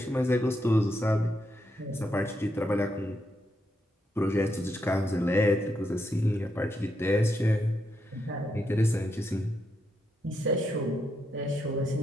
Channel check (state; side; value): normal; both; correlation 0.81